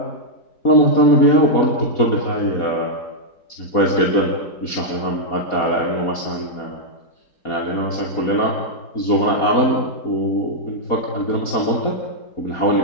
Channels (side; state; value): right; late; 4.2 ms